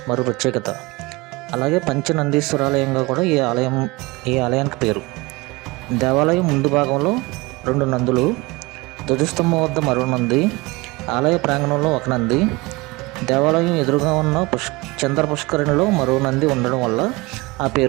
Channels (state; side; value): quieter; left; 23.5 dB